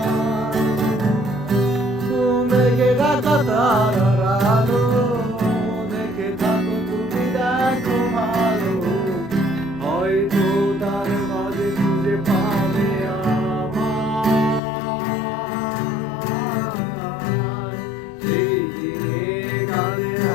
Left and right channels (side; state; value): right; drops out; at 14.6 s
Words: মেঘে ঢাকা তারার আলো, দেখে থাকো তুমি দেখো ভালো, হয়তো তার মাঝে খুঁজে পাবে আমায়। সেই দিনে গানে